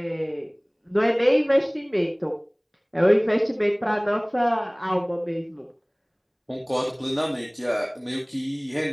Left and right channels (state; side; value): identical; both; correlation 1.00